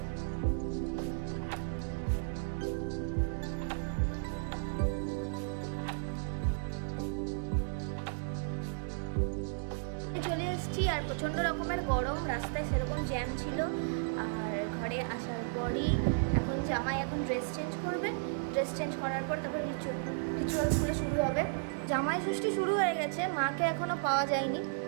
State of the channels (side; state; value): left; silent; digital silence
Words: চলে এসেছি আর প্রচণ্ড রকমের গরম, রাস্তায় সেরকম জ্যাম ছিল। আর ঘরে আসার পরই এখন জামাই ড্রেস চেঞ্জ করবে। ড্রেস চেঞ্জ করার পর তারপর রিচুয়ালসগুলো শুরু হবে। জামাই ষষ্ঠী শুরু হয়ে গেছে, মাকে এখনও পাওয়া যায়নি,